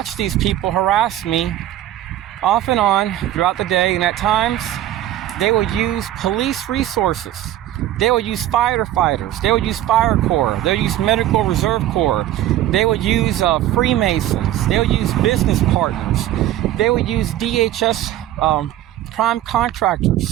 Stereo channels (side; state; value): left; quieter; 13.1 dB